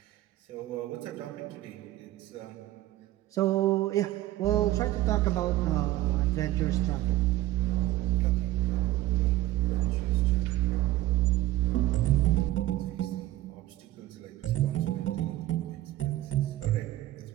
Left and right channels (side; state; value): left; quieter; 15.8 dB